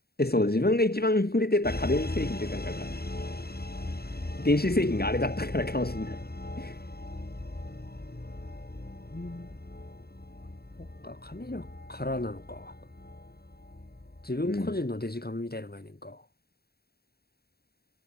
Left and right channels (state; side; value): late; right; 0.46 ms